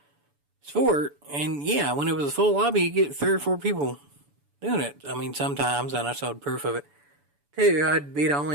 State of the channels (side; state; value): left; late; 7.0 ms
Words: Sport. And yeah, when it was a full lobby, you get 3 or 4 people doing it. I mean, sometimes, and I showed proof of it too, I'd be the